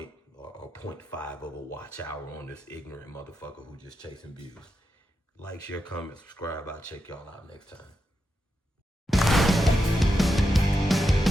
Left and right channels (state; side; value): normal; both; correlation 0.86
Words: or 0.5 of a watch hour on this ignorant motherfucker who just chasing views. Like, share, comment, subscribe. I'll check y'all out next time.